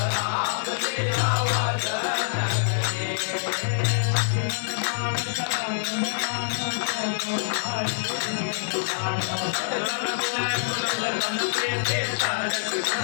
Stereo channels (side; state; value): right; silent; digital silence